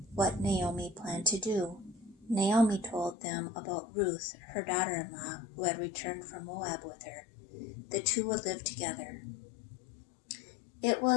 what Naomi planned to do. Naomi told them about Ruth, her daughter-in-law, who had returned from Moab with her. The two would live together. It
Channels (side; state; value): right; drops out; at 3.2 s